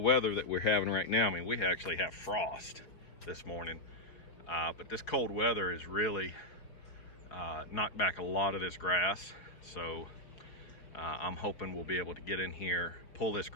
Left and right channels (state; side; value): late; right; 5.1 ms